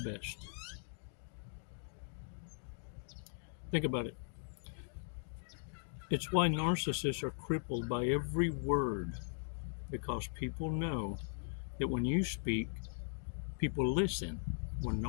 best. Think about it. It's why narcissists are crippled by every word, because people know that when you speak, people listen. When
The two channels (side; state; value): right; silent; digital silence